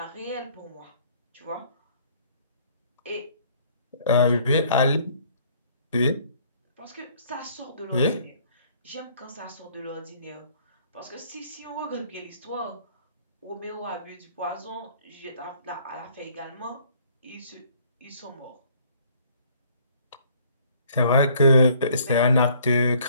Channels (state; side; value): inverted; both; correlation -0.60